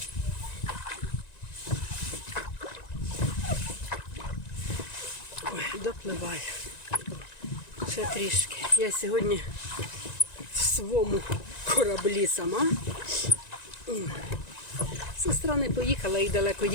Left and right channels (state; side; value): late; right; 1.9 ms